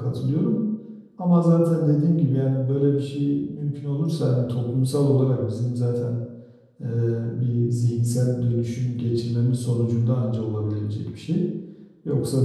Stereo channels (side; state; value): both; identical; correlation 1.00